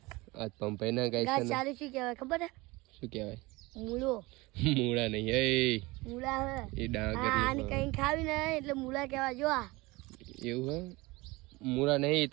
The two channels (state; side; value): quieter; left; 22.5 dB